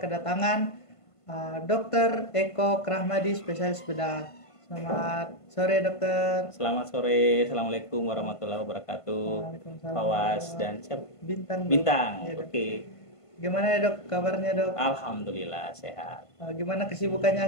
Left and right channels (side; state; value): right; late; 1.5 ms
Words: Dr. Eko Krahmadi, spesialis bedah. Selamat sore, dokter. Selamat sore, assalamualaikum warahmatullahi wabarakatuh. Fawas dan siapa? Bintang. Bintang, Ya, oke. Gimana ya dok, kabarnya dok? Alhamdulillah sehat. Gimana